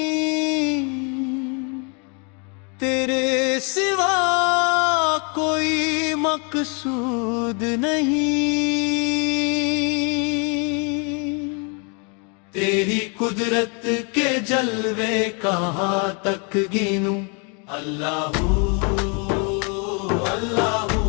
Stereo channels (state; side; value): quieter; right; 35.9 dB